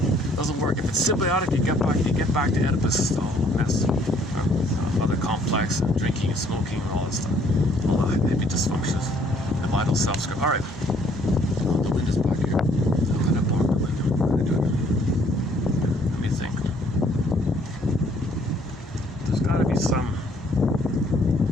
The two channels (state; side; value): normal; both; correlation 0.62